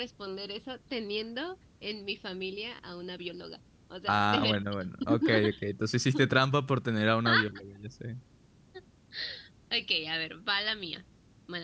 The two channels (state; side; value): identical; both; correlation 1.00